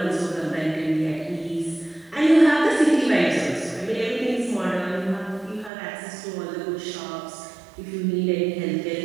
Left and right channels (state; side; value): drops out; left; at 5.7 s